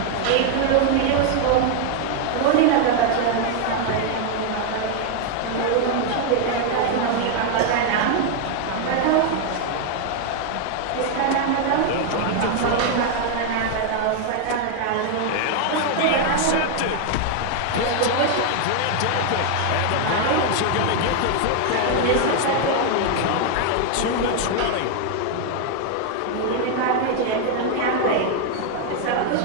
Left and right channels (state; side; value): different; both; correlation 0.00